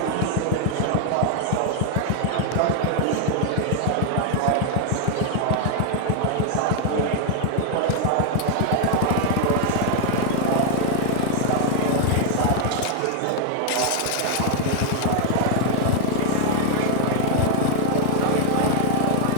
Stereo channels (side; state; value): both; different; correlation 0.00